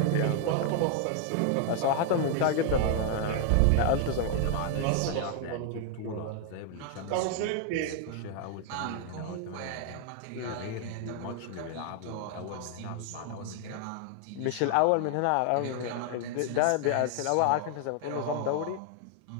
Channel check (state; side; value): different; both; correlation 0.00